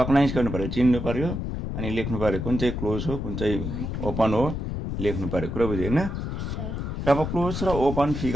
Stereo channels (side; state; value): left; noise; rumble, 4 dB below the sound